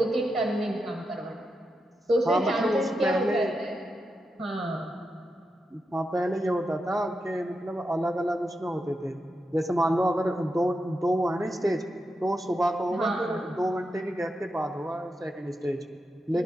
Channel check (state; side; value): normal; both; correlation 0.87